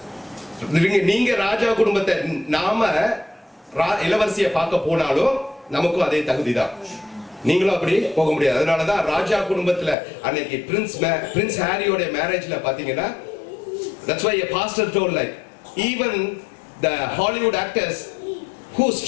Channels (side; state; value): right; drops out; at 10.0 s